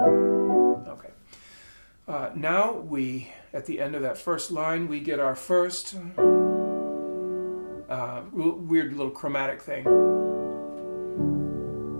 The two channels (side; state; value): both; inverted; correlation -1.00